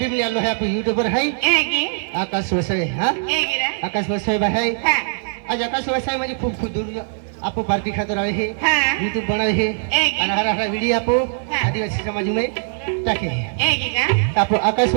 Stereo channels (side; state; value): left; silent; 59 dB below the other